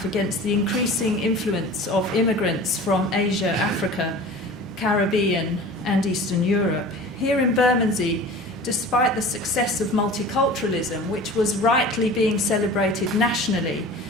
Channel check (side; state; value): both; normal; correlation 0.40